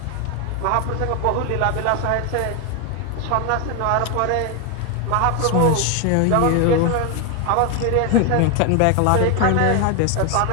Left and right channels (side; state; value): both; different; correlation 0.01